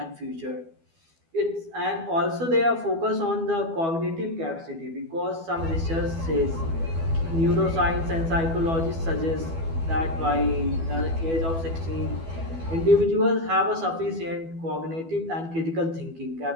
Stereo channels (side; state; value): left; late; 12 ms